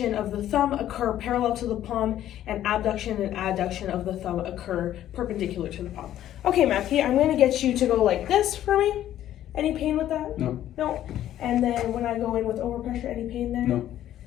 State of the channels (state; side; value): quieter; right; 12.2 dB